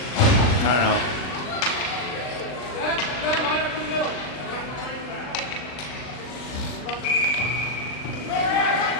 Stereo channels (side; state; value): right; late; 39 ms